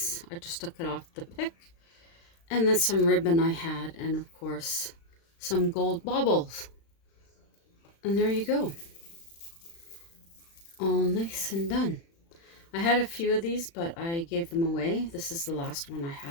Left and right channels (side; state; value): right; late; 36 ms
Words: I just took it off the pick. And then some ribbon I had, and of course some gold baubles. And there you go. All nice and done. I had a few of these, but I gave them away. This is the last one I